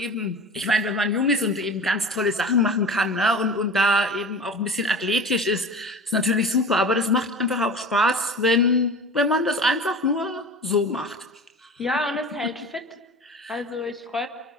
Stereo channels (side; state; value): both; normal; correlation 0.35